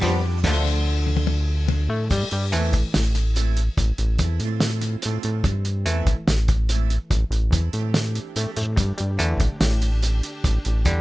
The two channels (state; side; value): normal; both; correlation 0.96